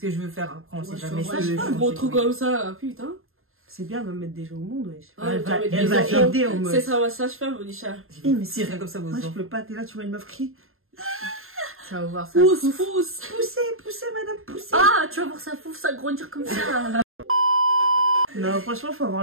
je veux faire après, on sait Ouais, jamais je ce que je veux pas un changer, gros truc oui. comme ça, putain. C'est bien, elle va mettre des gens au monde, wesh. Ouais, Elle va, mettre elle des va enfants. aider au C'est meuf. ça, ma sage-femme, Onisha. Eh, mais Si rien comme ça, vos moi, je enfants. peux pas, t'es là, tu vois une meuf crier. Ça va voir ça. Pousse, pousse. Poussez, madame, poussez. Ah, tu vas voir ça pouf, ça grandir comme ça. Non, franchement, faut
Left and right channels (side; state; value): left; late; 0.61 ms